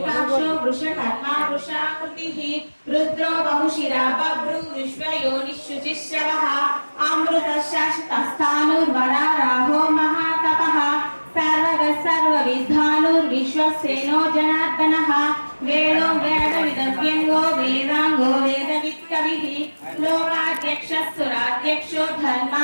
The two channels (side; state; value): both; inverted; correlation -1.00